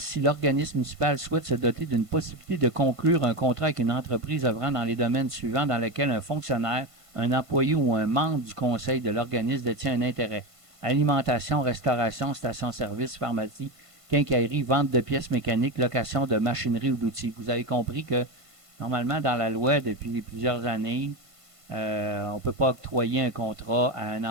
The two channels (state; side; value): late; left; 1.5 ms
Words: l'organisme municipal souhaite se doter d'une possibilité de conclure un contrat avec une entreprise œuvrant dans les domaines suivants dans lesquels un fonctionnaire, un employé ou un membre du conseil de l'organisme détient un intérêt. Alimentation, restauration, station-service, pharmacie, quincaillerie, vente de pièces mécaniques, location de machinerie ou d'outils. Vous avez compris que normalement dans la loi depuis plusieurs années, on ne peut pas octroyer un contrat à un